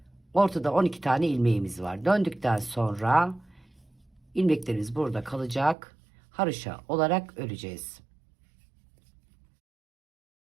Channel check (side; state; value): left; drops out; at 5.8 s